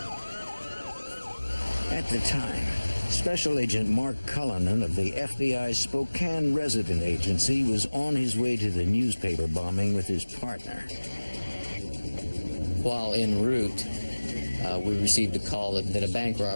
At the time, Special Agent Mark Cullinan of the FBI's Spokane Resident Agency was on his way to the newspaper bombing with his partner. While en route, we received a call that a bank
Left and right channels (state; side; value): inverted; both; correlation -1.00